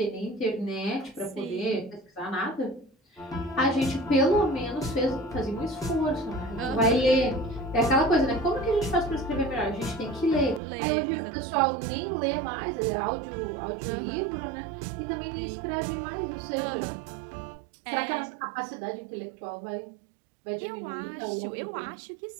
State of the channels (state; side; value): drops out; left; at 10.6 s